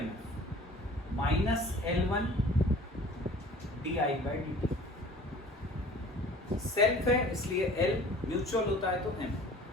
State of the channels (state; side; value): normal; both; correlation 0.47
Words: minus L1 D I by D T, self है इसलिए L, म्यूचुअल होता है तो M,